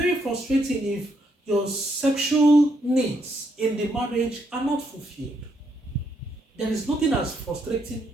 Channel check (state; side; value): normal; both; correlation 0.76